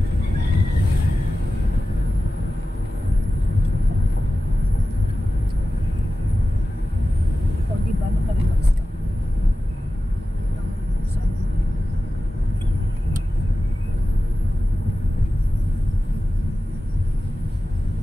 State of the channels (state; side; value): normal; both; correlation 0.95